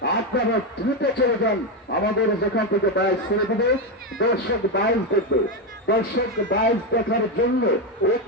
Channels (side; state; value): both; normal; correlation 0.09